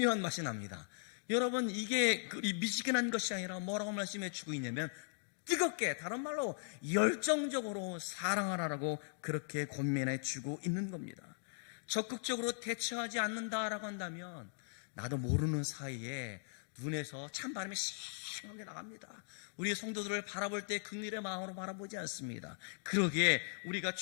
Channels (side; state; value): right; silent; digital silence